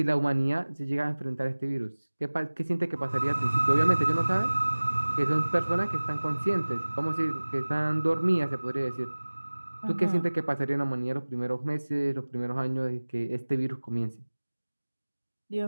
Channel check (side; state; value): both; inverted; correlation -1.00